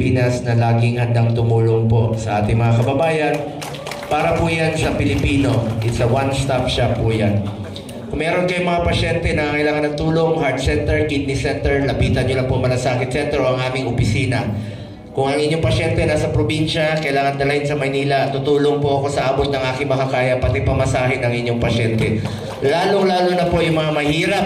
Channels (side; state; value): both; identical; correlation 1.00